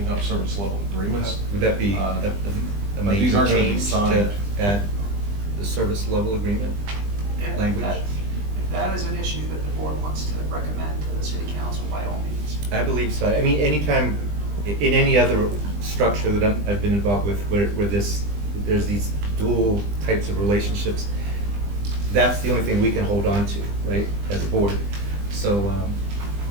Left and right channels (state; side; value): late; left; 20 ms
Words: up service level agreements. Would that be Uh, a but these major aren't gonna be change to signed. add the service level agreement If language? If that is an issue that the board wants to recommend to the city council, by all means. I believe so. I mean, anytime, in any other structure that I've been involved with where there's these dual types of relationships, that's the only thing we can hold on to, right, as a board. So,